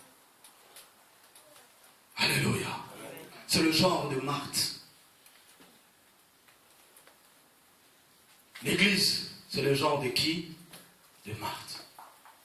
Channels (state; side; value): identical; both; correlation 1.00